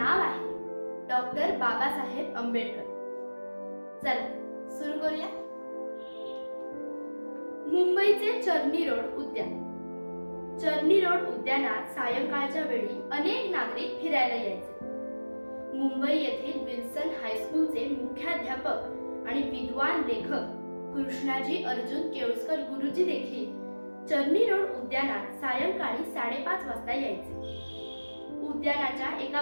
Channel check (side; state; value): both; inverted; correlation -1.00